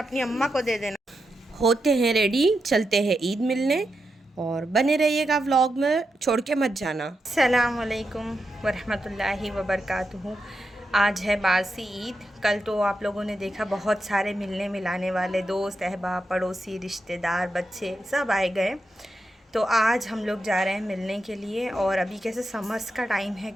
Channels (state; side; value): normal; both; correlation 0.86